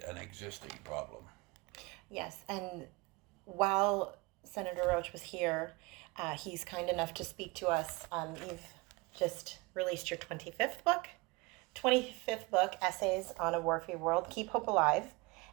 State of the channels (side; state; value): left; quieter; 24.9 dB